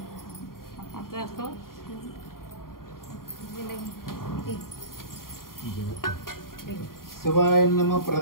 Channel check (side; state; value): right; late; 0.91 ms